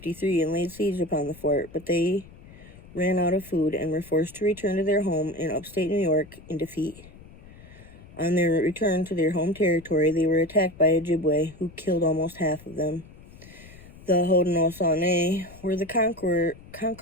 and laid siege upon the fort, but they ran out of food and were forced to return to their home in upstate New York in defeat. On their return to their home territory, they were attacked by Ojibwe, who killed almost half of them. The Haudenosaunee were the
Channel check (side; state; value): left; noise; rumble, 20 dB below the sound